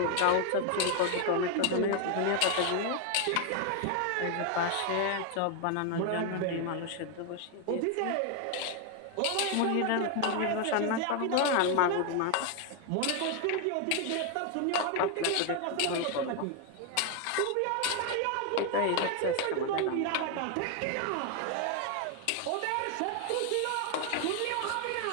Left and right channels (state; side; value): different; both; correlation 0.01